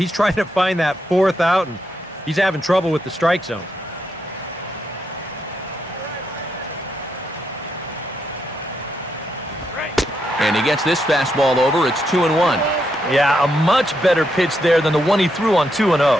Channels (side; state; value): both; normal; correlation 0.80